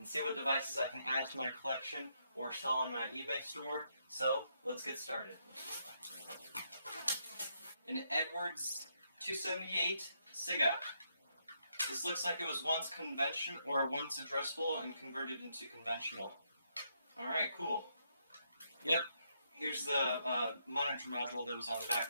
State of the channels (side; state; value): both; inverted; correlation -0.77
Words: see what devices I can add to my collection or sell on my eBay store. So, let's get started. An Edwards 278 SIGA. This looks like it was once addressable and converted into conventional. Alright, cool. Yep, here's the monitor module that was on the back